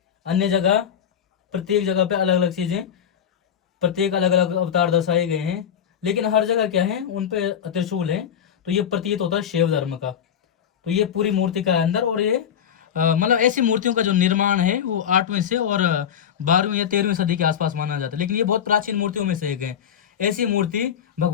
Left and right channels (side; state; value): right; quieter; 8.7 dB